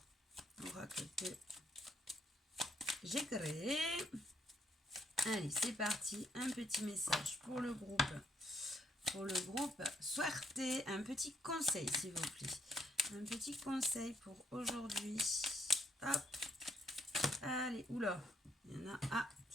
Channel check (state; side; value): normal; both; correlation 0.71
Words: Oracle que j'ai créé. Allez, c'est parti. Un petit message pour le groupe. Souhaitez un petit conseil, s'il vous plaît. Un petit conseil pour aujourd'hui. Hop. Allez, oula. Il y en a. Ah.